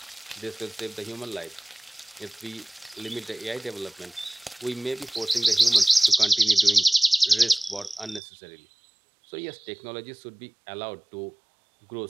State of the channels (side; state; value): left; drops out; at 8.2 s